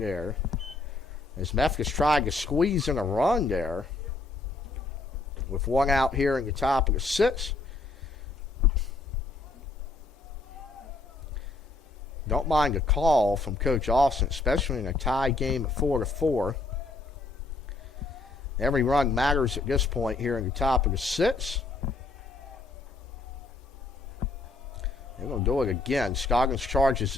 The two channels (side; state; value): right; quieter; 3.4 dB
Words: As Memphis tried to squeeze in a run there. With 1 out here in the top of the 6th. Don't mind a call from Coach Austin, especially in a tie game at 4-4. Every run matters at this point here in the top of the 6th. They're going to do it again. Scoggins charges